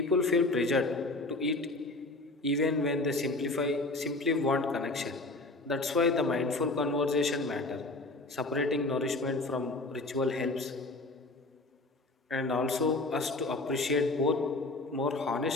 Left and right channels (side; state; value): right; quieter; 3.0 dB